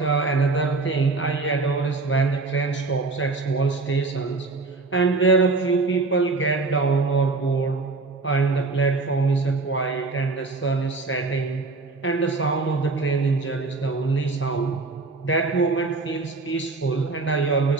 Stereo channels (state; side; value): quieter; left; 3.8 dB